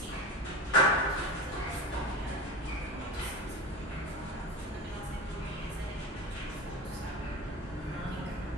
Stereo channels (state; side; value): normal; both; correlation 0.28